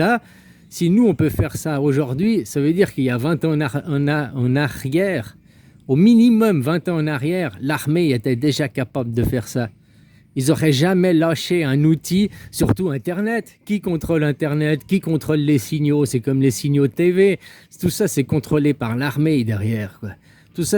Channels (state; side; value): identical; both; correlation 1.00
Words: si nous on peut faire ça aujourd'hui, ça veut dire qu'il y a 20 ans en arrière, au minimum 20 ans en arrière, l'armée était déjà capable de faire ça. Ils n'auraient jamais lâché un outil, surtout Internet. Qui contrôle Internet? Qui contrôle les signaux? C'est comme les signaux TV. Tout ça, c'est contrôlé par l'armée derrière, quoi. Tout